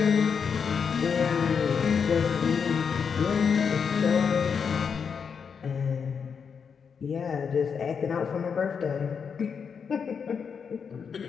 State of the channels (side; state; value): right; quieter; 6.4 dB